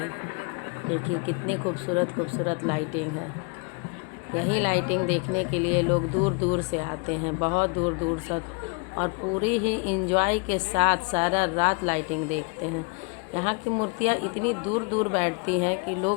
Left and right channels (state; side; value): quieter; right; 34.1 dB